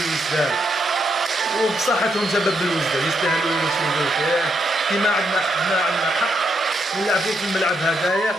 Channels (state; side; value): normal; both; correlation 0.79